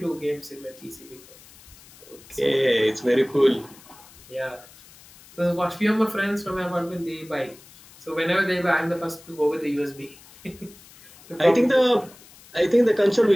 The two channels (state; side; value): noise; left; hiss, 23 dB below the sound